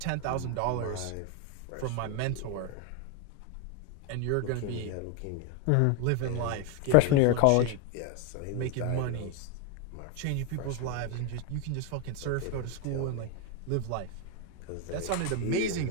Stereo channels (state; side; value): different; both; correlation 0.01